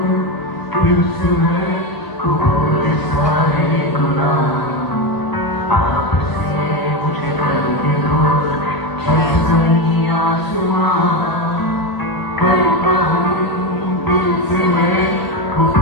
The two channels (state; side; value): late; right; 1.0 ms